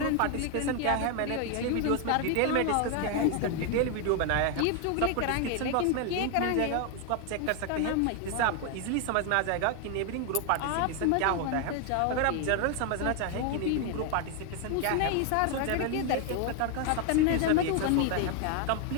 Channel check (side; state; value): both; different; correlation 0.01